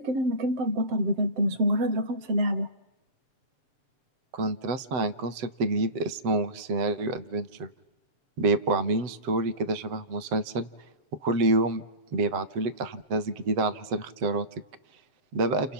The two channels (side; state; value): left; late; 7.8 ms